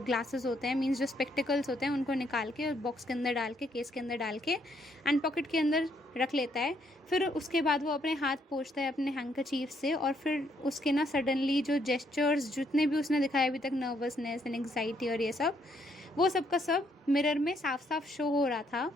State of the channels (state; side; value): normal; both; correlation 0.72